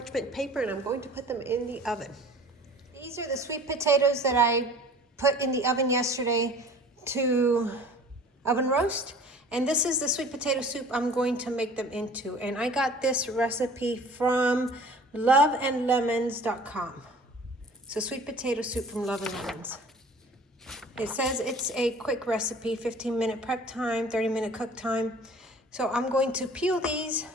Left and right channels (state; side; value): normal; both; correlation 0.46